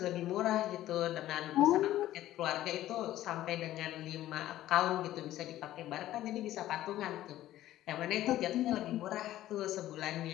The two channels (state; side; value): quieter; right; 14.0 dB